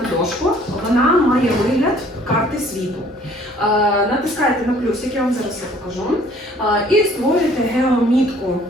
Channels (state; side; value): normal; both; correlation 0.57